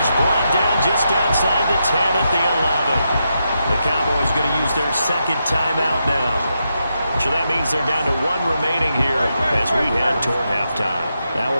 brought down just outside the 10 at the 11. The Cowboys going to use their 2nd timeout now. So that means they're down to 1 remaining here as we head toward halftime. Now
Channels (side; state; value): both; inverted; correlation -0.84